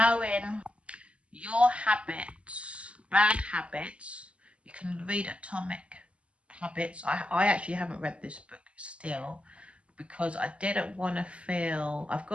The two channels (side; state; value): left; late; 0.058 ms